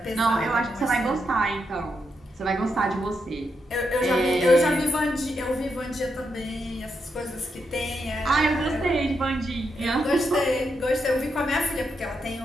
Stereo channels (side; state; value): both; normal; correlation 0.82